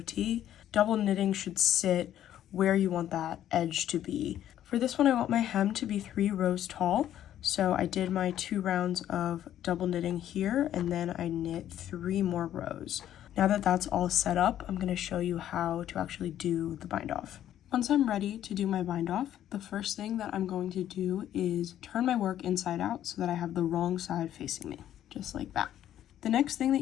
Double knitting should sit where you want that edge to be. For this one, I want my hem to be 3 rows tall, so I did my 2 rounds of double knitting here, and then I knit 3 more rows. Now that that's all set up, I'm gonna show you how to actually do the bind off. Once I'm ready to do my bind off, the first thing that I'm going to do is turn my work inside out so that I have the wrong side facing me, just like that. The next thing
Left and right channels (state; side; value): quieter; right; 11.5 dB